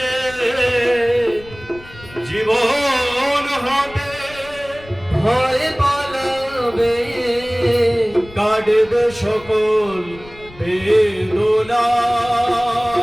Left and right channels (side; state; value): left; noise; rumble, 20 dB below the sound